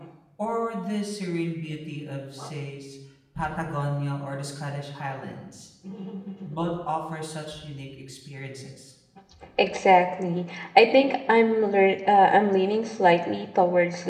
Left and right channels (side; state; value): both; identical; correlation 1.00